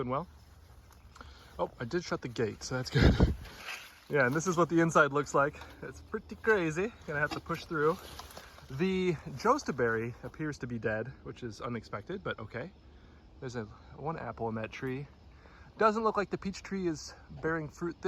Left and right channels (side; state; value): both; identical; correlation 1.00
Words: well. Oh, I did shut the gate, so that's good. Yeah, and this is what the inside looks like. It's pretty crazy. Gonna have to push through. The jostaberry appears to be dead, which is unexpected, but okay. There's one apple in that tree. Doesn't look like the peach tree is bearing fruit